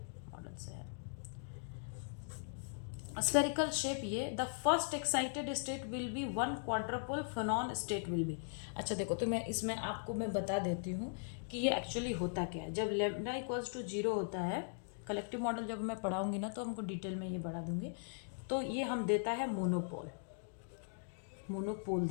मॉडल से है। स्फेरिकल शेप, ये the first excited state will be one quadrupole phonon state will be. अच्छा देखो, तो मैं इसमें आपको मैं बता देती हूँ कि ये एक्चुअली होता क्या है। जब लेमडा इक्वल्स टू 0 होता है, कलेक्टिव मॉडल जब मैं पढ़ाऊंगी ना तो हमको डिटेल में ये बढ़ा दूंगी, तो ये हम देता है मोनोपोल, मोनोपोल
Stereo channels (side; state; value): right; silent; digital silence